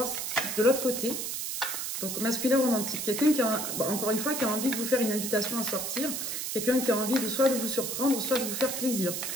de l'autre côté. Donc, masculin romantique. Quelqu'un qui a, encore une fois, qui a envie de vous faire une invitation à sortir. Quelqu'un qui a envie de soit de vous surprendre, soit de vous faire plaisir.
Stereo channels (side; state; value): right; noise; hiss, 3 dB below the sound